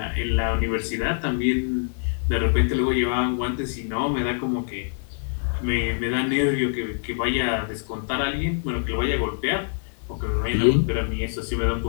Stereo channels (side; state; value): right; silent; 62 dB below the other